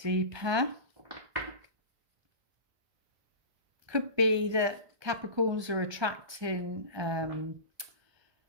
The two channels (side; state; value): left; late; 1.2 ms